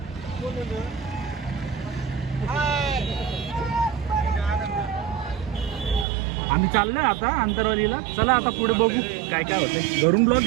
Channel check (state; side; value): drops out; left; at 6.1 s